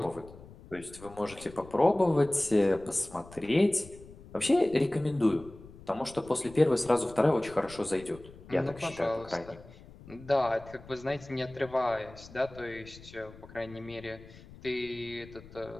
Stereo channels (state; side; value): noise; left; rumble, 19 dB below the sound